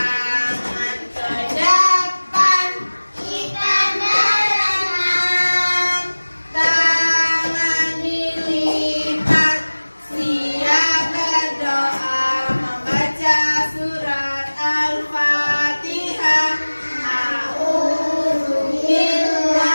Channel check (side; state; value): both; inverted; correlation -1.00